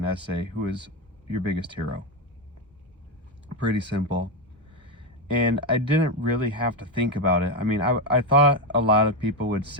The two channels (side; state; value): both; normal; correlation 0.10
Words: essay, who is your biggest hero? Pretty simple. And I didn't really have to think about it. I mean, I thought a lot of people would